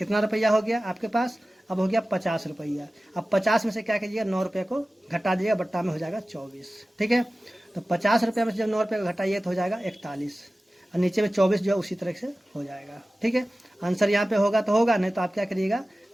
रुपया हो गया आपके पास, अब हो गया 50 रुपया। अब 50 में से क्या कीजिएगा, 9 रुपये को घटा दीजिएगा, बट्टा में हो जाएगा 24। ठीक है, तो 50 रुपये में से जब 9 रुपये को घटाइए तो हो जाएगा 41, और नीचे में 24 जो है उसी तरह से हो जाएगा। ठीक है, आंसर यहाँ पे होगा तो होगा, नहीं तो आप क्या करिएगा,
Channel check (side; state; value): both; normal; correlation 0.96